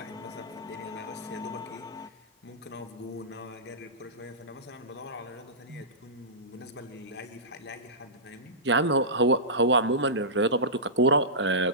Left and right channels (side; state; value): both; normal; correlation -0.19